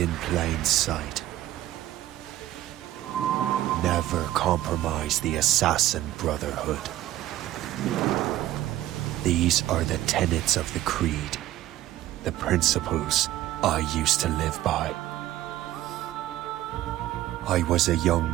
plain sight. Never compromise the Assassin Brotherhood. These are the tenets of the Creed, the principles I used to live by. I was a young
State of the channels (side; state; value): left; quieter; 14.1 dB